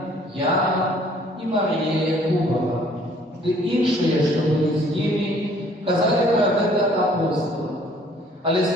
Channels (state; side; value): normal; both; correlation 0.58